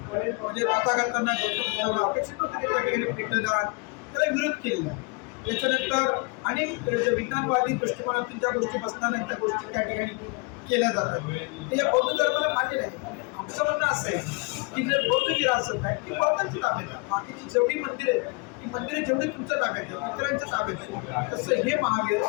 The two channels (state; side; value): quieter; right; 30.6 dB